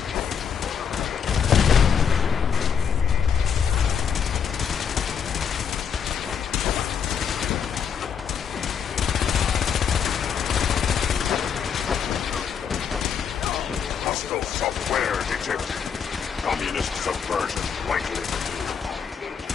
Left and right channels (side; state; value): right; quieter; 7.3 dB